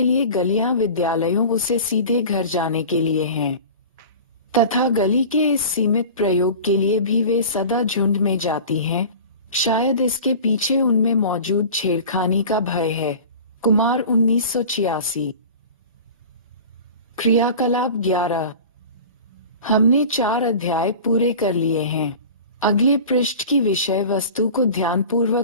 लिए गलियां विद्यालयों से सीधे घर जाने के लिए हैं, तथा गली के इस सीमित प्रयोग के लिए भी वे सदा झुंड में जाती हैं। शायद इसके पीछे उनमें मौजूद छेड़खानी का भय है। कुमार 1986। क्रियाकलाप 11। हमने 4 अध्याय पूरे कर लिए हैं। अगले पृष्ठ की विषय वस्तु को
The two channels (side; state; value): both; inverted; correlation -0.38